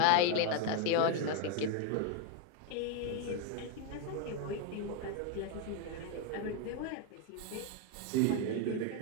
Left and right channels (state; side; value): different; both; correlation 0.02